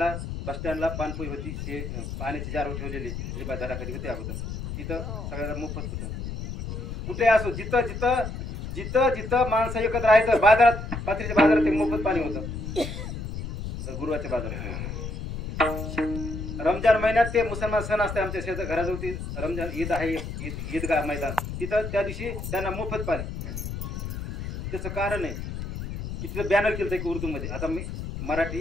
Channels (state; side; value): noise; left; rumble, 6 dB below the sound